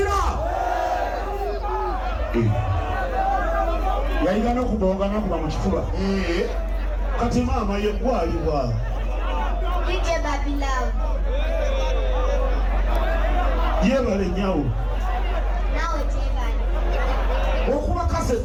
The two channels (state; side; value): identical; both; correlation 1.00